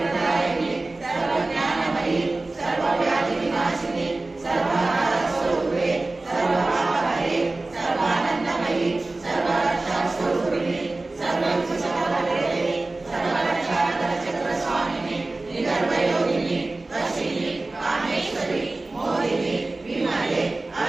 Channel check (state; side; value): quieter; left; 3.1 dB